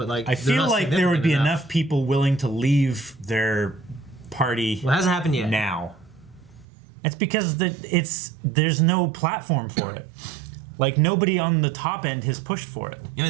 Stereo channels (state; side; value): drops out; left; at 6.7 s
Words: like I they're feel not like there would be significant enough people willing to leave their party Well, it hasn't happened yet. now. It's because there's no platform for it. Like nobody on the top end has pushed for it. You know